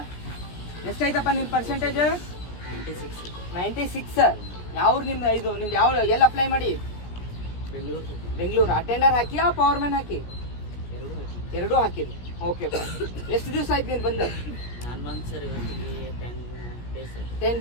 ಎಷ್ಟೈತಪ್ಪ ನಿನ್ನ ಪರ್ಸೆಂಟೇಜ್? 96. ಯಾವ ನಿಮ್ದು? ಇದು ನಿಮ್ದು ಯಾವ ಎಲ್ಲಿ ಅಪ್ಲೈ ಮಾಡಿ? ಬೆಂಗಳೂರು. ಅಟೆಂಡರ್ ಹಾಕಿಯಾ ಪವರ್ ಮ್ಯಾನ್ ಹಾಕಿ? ಎರಡೂ ಹಾಕಿರಿ. ಓಕೆ. ಎಷ್ಟು ದಿವಸ ಆಯ್ತು ನೀನು ಬಂದು? 10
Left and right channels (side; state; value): right; late; 17 ms